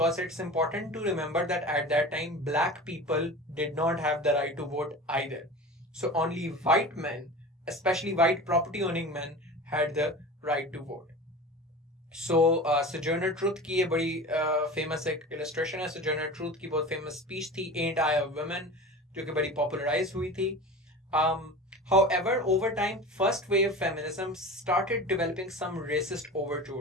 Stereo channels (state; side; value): normal; both; correlation 0.33